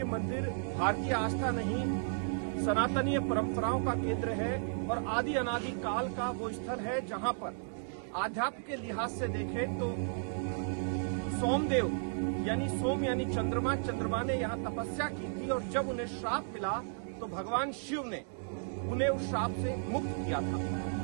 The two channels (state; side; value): silent; left; digital silence